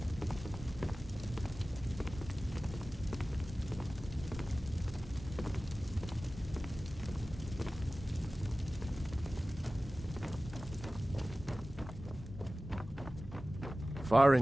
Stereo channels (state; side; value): normal; both; correlation 0.97